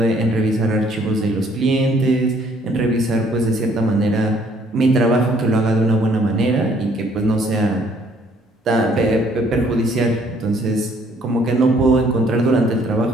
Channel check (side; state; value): both; normal; correlation 0.63